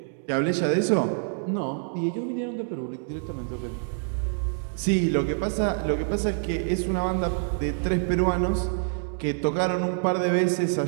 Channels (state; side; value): silent; left; digital silence